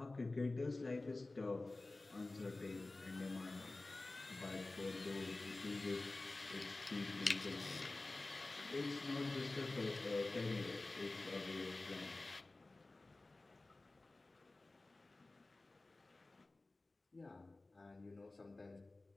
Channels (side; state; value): right; quieter; 3.1 dB